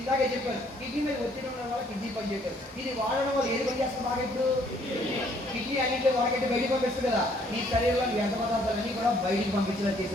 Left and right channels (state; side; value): normal; both; correlation 0.64